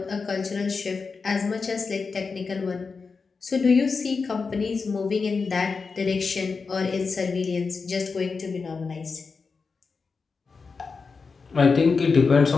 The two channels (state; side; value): quieter; right; 4.8 dB